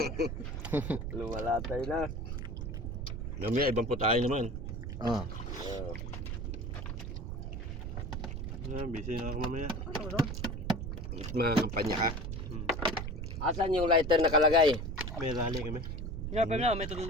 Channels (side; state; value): right; noise; rumble, 5 dB below the sound